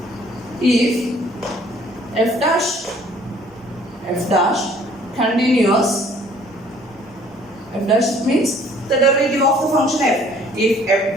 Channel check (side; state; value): both; normal; correlation 0.57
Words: if f dash continuous, f dash means the derivative of the function f. If f